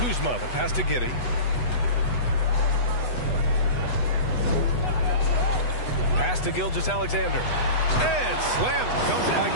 the pass to Giddey. Pass to Gilgeous-Alexander. And slam comes by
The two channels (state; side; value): late; right; 8.1 ms